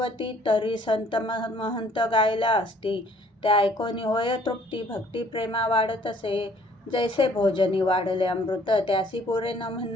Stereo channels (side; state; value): both; normal; correlation 0.59